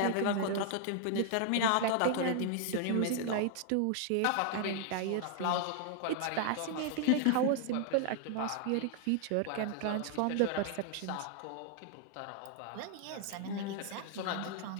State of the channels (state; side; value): different; both; correlation 0.00